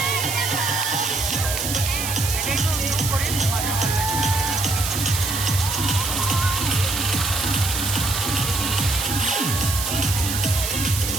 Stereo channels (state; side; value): noise; right; hiss, 3 dB below the sound